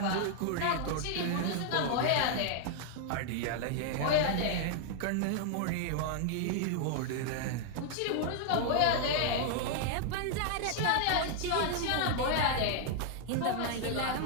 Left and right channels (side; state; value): both; different; correlation 0.00